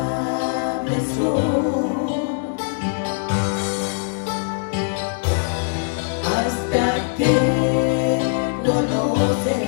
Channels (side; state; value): right; silent; digital silence